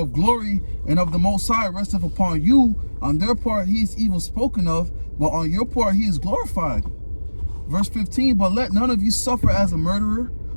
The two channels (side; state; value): both; inverted; correlation -1.00